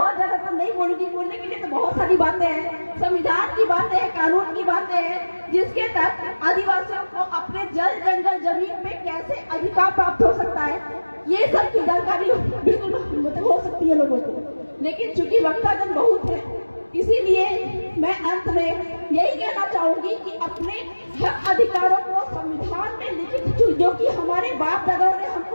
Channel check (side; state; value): both; inverted; correlation -1.00